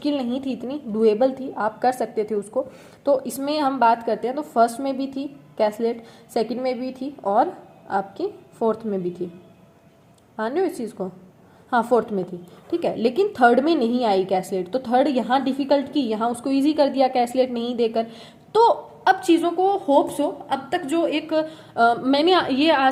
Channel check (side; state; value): both; identical; correlation 1.00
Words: नहीं थी इतनी, डुएबल थी, आप कर सकते थे उसको। तो इसमें हम बात करते हैं तो फर्स्ट में भी थी कैसलेट, सेकंड में भी थी, और आपकी फोर्थ में भी थी, मान रहे हो इस चीज़ को, हाँ फोर्थ में थी, ठीक है। लेकिन थर्ड में नहीं आई कैसलेट, तो थर्ड यहाँ डिफिकल्ट की, यहाँ उसको इजी कर दिया कैसलेट नहीं देकर। तो अब चीज़ों को होप्स हो, अब तक जो एक मैंने ये